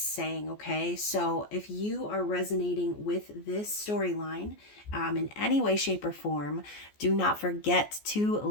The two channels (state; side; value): late; right; 14 ms